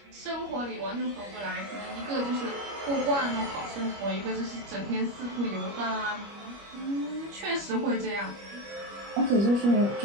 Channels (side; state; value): left; late; 25 ms